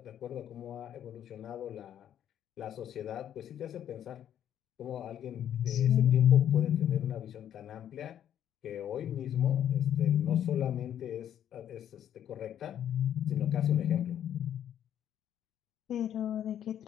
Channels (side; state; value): right; quieter; 10.2 dB